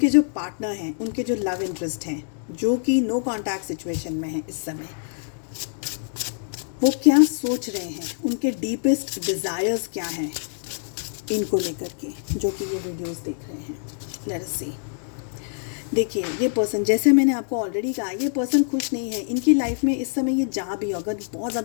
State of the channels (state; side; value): silent; right; 62 dB below the other